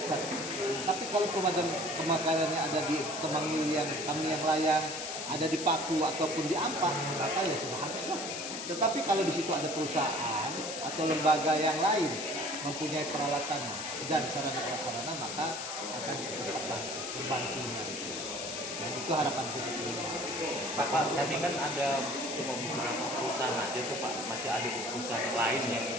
Tapi kalau kebakarannya ada di Temangil yang kami yang layang, ada di Paku ataupun di Ampah, maka ya sudah habislah. Tetapi kalau di situ ada perusahaan atau lembaga yang lain mempunyai peralatan dan sarana-prasarana, maka akan cepat membantunya. Dan itu harapan kita semua. Pak, tadi kan ada cuma beberapa perusahaan aja tuh Pak, masih ada perusahaan lain yang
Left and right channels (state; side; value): noise; left; hiss, 6 dB below the sound